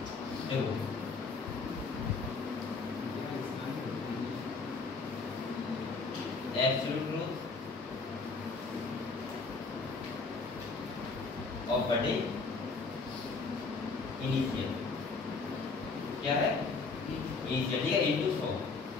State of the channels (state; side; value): quieter; right; 4.3 dB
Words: देखो एब्सोल्यूट ग्रोथ ऑफ बटे इनिशियल क्या है, इनिशियल ठीक है, इनटू 100